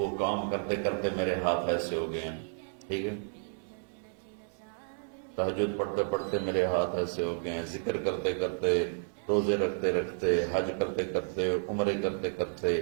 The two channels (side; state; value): left; silent; 57 dB below the other